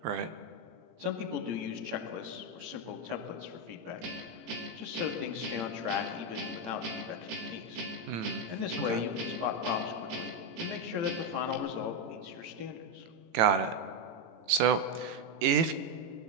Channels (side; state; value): left; late; 18 ms